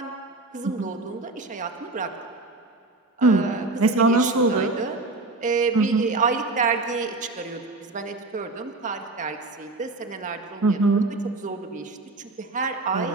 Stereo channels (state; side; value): quieter; left; 3.2 dB